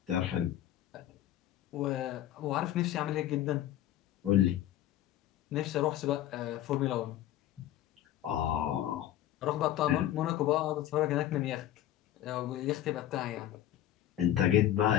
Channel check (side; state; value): right; quieter; 12.6 dB